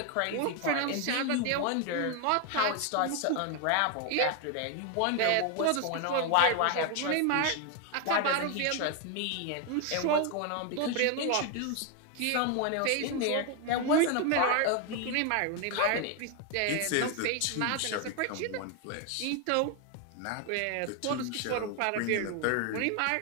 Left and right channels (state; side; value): different; both; correlation 0.01